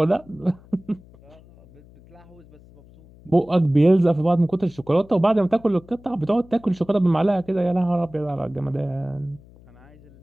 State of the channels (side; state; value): left; noise; hum, 24 dB below the sound